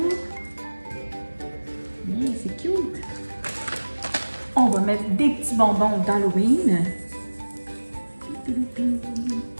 Mais c'est cute. On va mettre des petits bonbons d'Halloween.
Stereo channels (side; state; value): both; inverted; correlation -1.00